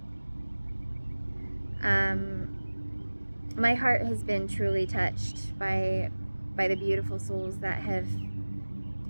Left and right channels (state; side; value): inverted; both; correlation -1.00